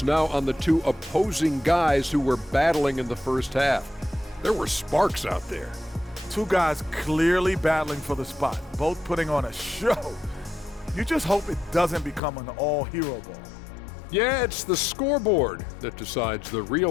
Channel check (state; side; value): drops out; right; at 12.2 s